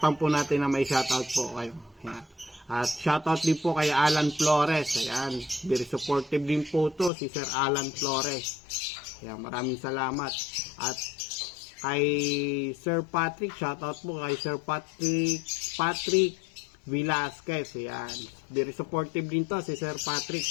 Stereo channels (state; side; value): drops out; right; at 7.1 s